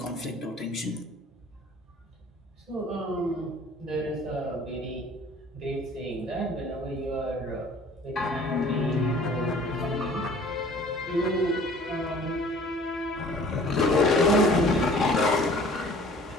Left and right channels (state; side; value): normal; both; correlation 0.50